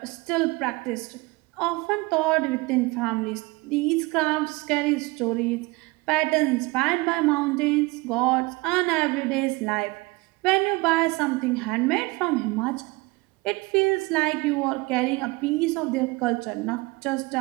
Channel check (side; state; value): left; quieter; 23.6 dB